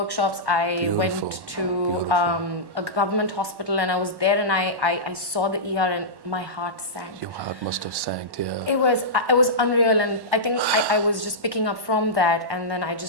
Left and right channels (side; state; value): left; late; 1.1 ms